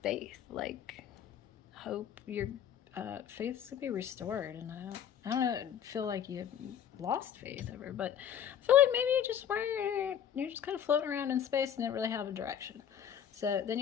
faith. Like, hope your faith's going to be restored. And I don't feel like you've lost faith ever, but I feel like maybe you're just kind of floating around in space and didn't really have a direction. So then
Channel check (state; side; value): quieter; right; 9.2 dB